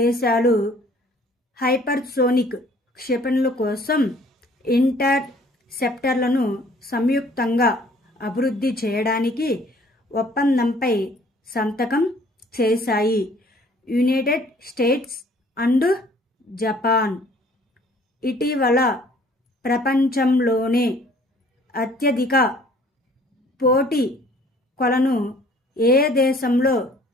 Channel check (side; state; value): both; normal; correlation 0.56